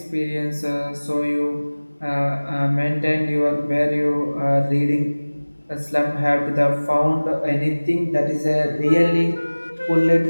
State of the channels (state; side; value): inverted; both; correlation -1.00